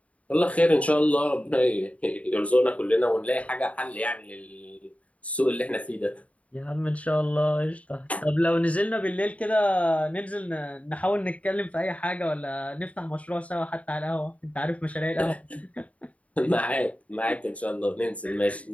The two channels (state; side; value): late; right; 0.067 ms